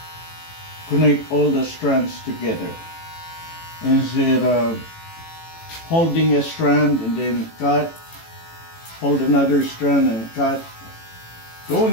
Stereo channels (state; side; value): late; right; 18 ms